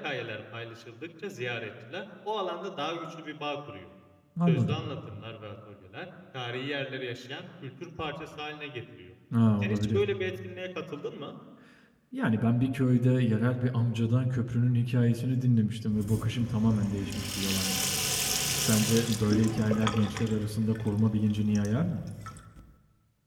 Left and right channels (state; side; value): identical; both; correlation 1.00